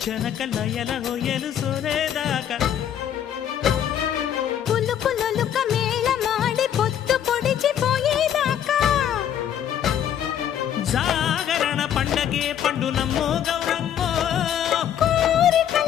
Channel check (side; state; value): right; quieter; 9.9 dB